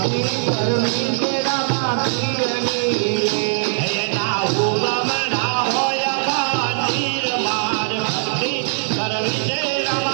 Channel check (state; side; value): silent; left; 59 dB below the other